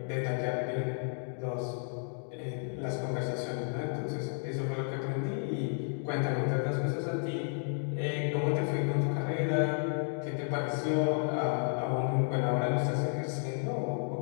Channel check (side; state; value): right; silent; 56 dB below the other